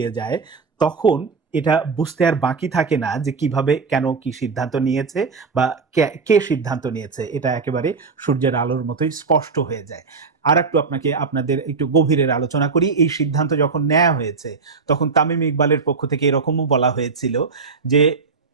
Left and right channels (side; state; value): left; quieter; 4.8 dB